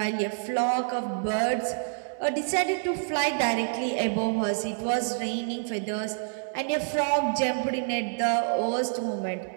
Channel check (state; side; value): silent; left; 60 dB below the other